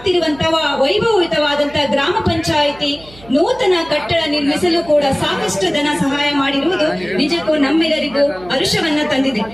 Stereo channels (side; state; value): right; noise; hum, 22 dB below the sound